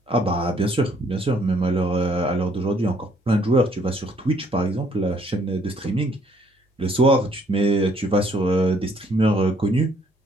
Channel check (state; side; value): normal; both; correlation 0.65